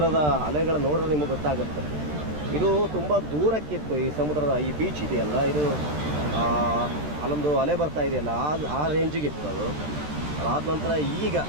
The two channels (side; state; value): left; late; 13 ms